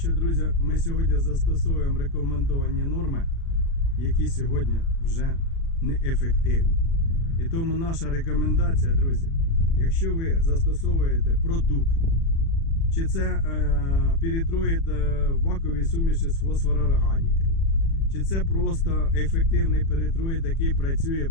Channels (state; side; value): late; right; 36 ms